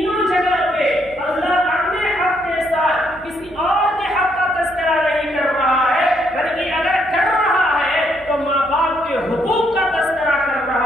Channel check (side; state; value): right; noise; hum, 23 dB below the sound